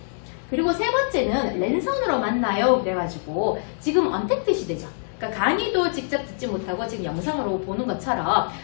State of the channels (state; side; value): silent; right; digital silence